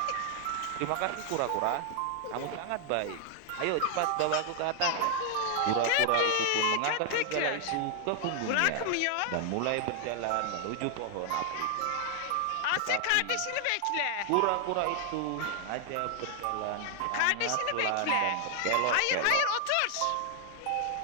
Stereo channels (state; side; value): different; both; correlation 0.00